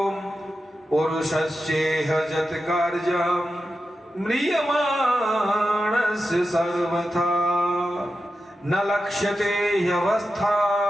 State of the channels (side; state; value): both; normal; correlation 0.90